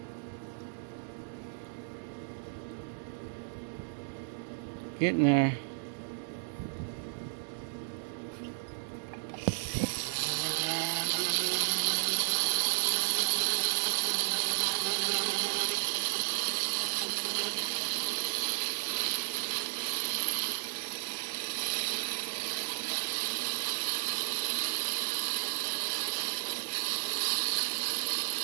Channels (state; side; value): silent; left; digital silence